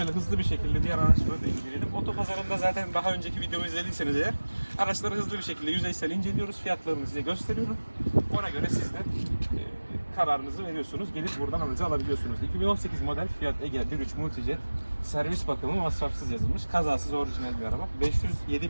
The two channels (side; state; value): both; inverted; correlation -1.00